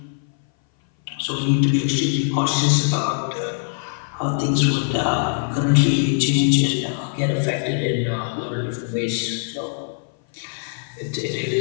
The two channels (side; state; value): right; silent; 59 dB below the other